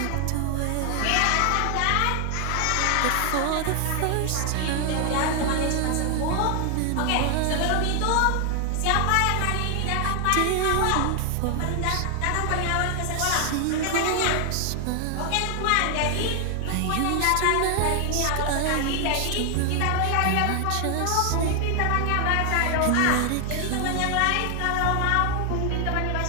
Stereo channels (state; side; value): different; both; correlation 0.00